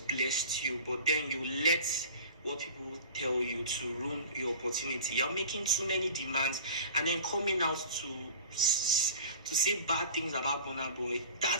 blessed you, but then you let what people tell you to ruin your opportunity. You're making too many demands and then coming out to say bad things about Burna Boy.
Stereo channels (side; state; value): both; inverted; correlation -0.41